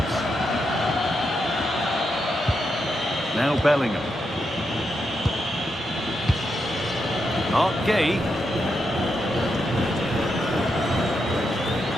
Now Bellingham. Mark Gay.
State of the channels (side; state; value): both; normal; correlation 0.83